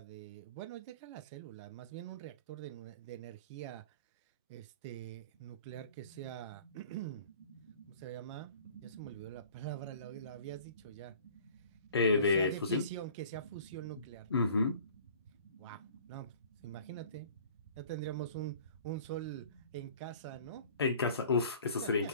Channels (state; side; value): inverted; both; correlation -0.48